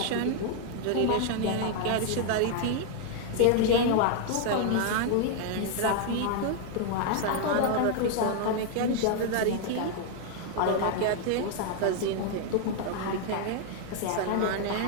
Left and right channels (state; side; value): different; both; correlation 0.00